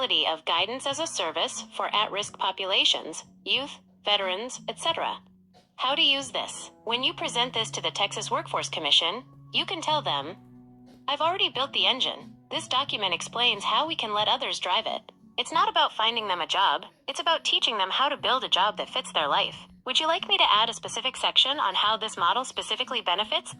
of guidance as a service for at-risk populations, youth, veterans, etc. How to use this. When you present this to the Texas Workforce Commission, you can tell them, "I've already built the engine. This document explains how we can let others drive it. It's not about finding them a job, it's about teaching them how to build a job that fits their life. Would you like me to add a specific section on how this model specifically benefits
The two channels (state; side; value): identical; both; correlation 1.00